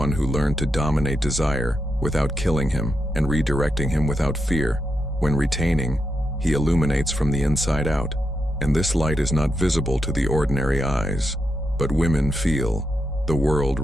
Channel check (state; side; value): normal; both; correlation 0.85